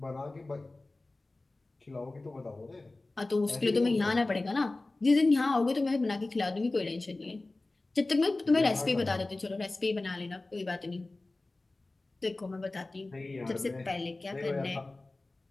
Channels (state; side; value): quieter; right; 3.1 dB